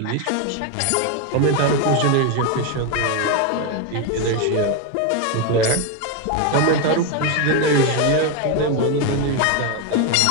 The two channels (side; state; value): both; different; correlation 0.02